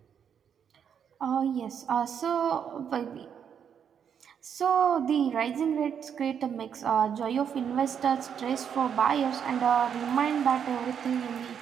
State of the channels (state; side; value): quieter; left; 7.9 dB